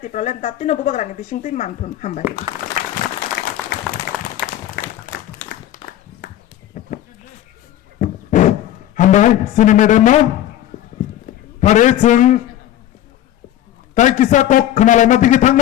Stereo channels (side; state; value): right; quieter; 12.5 dB